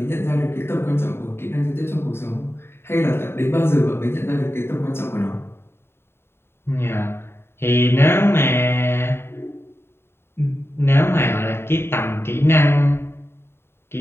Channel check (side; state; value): right; late; 0.11 ms